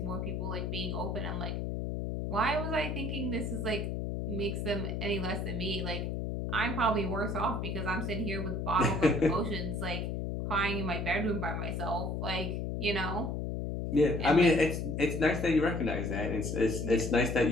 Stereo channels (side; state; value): left; noise; hum, 2 dB below the sound